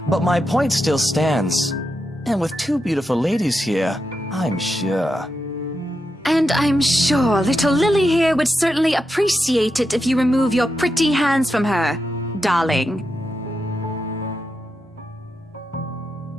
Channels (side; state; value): both; normal; correlation 0.86